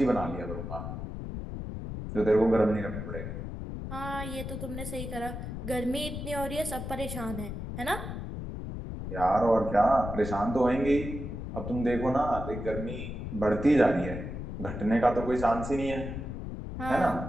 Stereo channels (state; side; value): noise; left; rumble, 6 dB below the sound